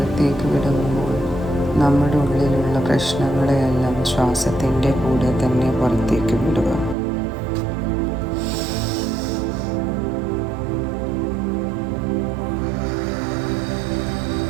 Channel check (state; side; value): drops out; left; at 7.0 s